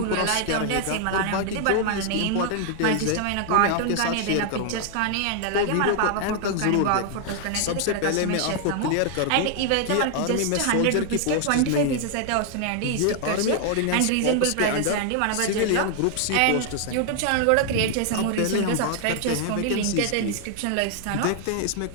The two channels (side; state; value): both; different; correlation 0.00